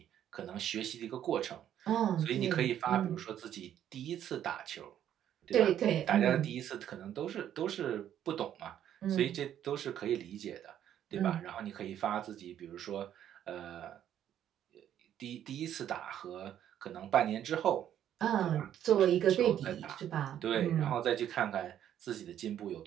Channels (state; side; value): quieter; left; 10.5 dB